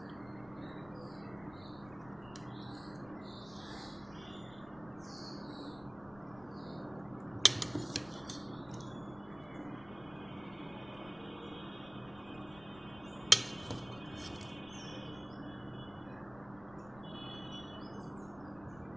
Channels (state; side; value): noise; left; rumble, 20 dB below the sound